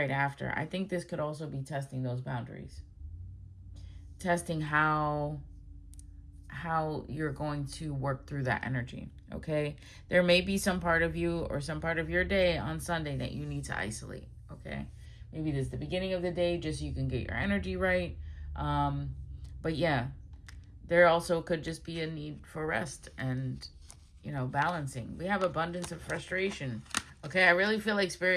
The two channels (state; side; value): identical; both; correlation 1.00